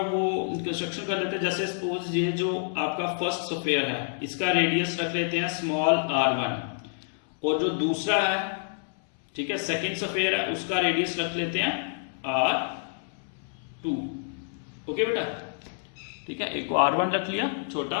वो कंस्ट्रक्शन कर लेते हैं। जैसे सपोज ये जो आपका फर्स्ट स्फीयर है इसका रेडियस रख लेते हैं स्मॉल r1, और जो दूसरा है, ठीक है, सेकंड स्फीयर है, उसका रेडियस रख लेते हैं r2। ओके बेटा, ठीक है, एक को r1 रख लिया छोटा,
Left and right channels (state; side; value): silent; right; 59 dB below the other